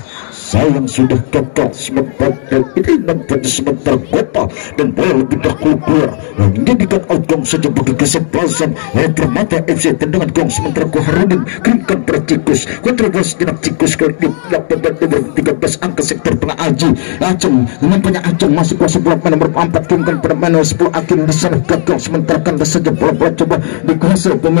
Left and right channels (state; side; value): silent; right; digital silence